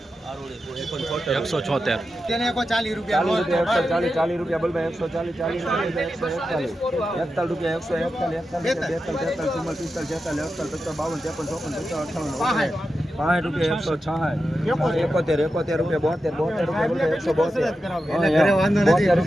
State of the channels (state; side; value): normal; both; correlation 0.90